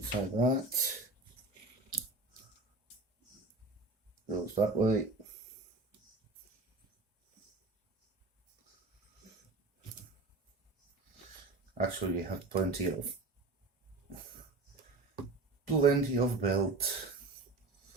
that. Goes that way. Actually, you have plenty of belt.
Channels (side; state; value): left; quieter; 3.3 dB